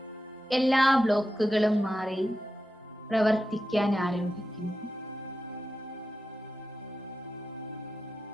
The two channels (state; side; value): normal; both; correlation 0.90